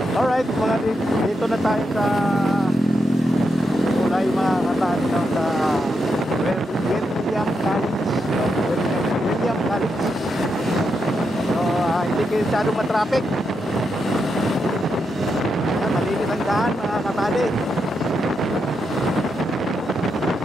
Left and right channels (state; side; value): normal; both; correlation 0.84